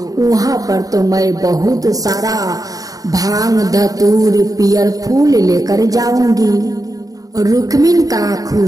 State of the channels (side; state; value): left; late; 0.18 ms